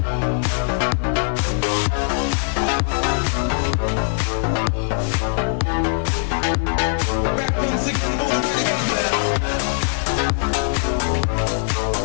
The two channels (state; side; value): silent; right; digital silence